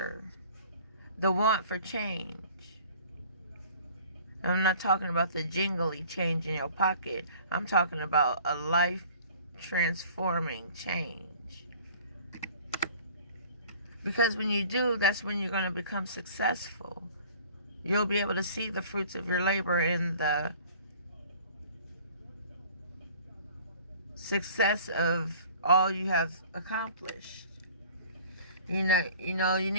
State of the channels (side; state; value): both; inverted; correlation -0.49